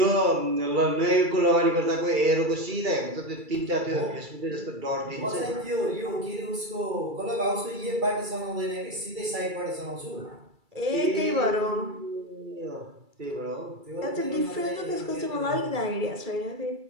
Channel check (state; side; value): late; left; 2.3 ms